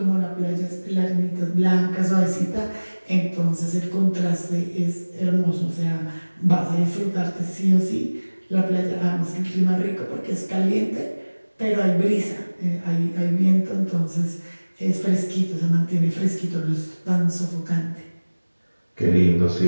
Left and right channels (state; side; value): inverted; both; correlation -1.00